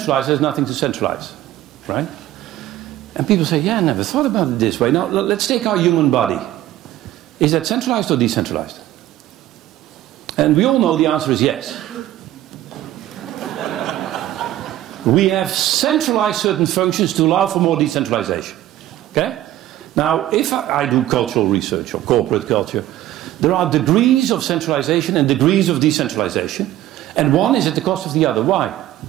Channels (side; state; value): left; quieter; 13.8 dB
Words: there's nothing to centralize. Right? And people say, yeah, I never thought about it this way. Now, let's take our human body. Is that centralized or decentralized? And we all know the answer is yes. We have centralized certain functions to allow for more decentralization. Okay? Now, if I do cultural research or corporate culture, there are degrees of centralization and degrees of decentralization. And one is at the cost of the other. Why?